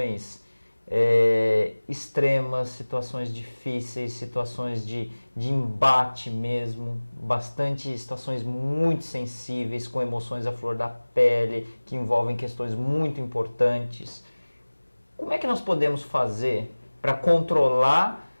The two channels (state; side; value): inverted; both; correlation -1.00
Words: extremas, situações difíceis, situações de embate mesmo, bastante situações muito sensíveis, com emoções à flor da pele, que envolvem questões muito importantes. Como é que nós podemos fazer para controlar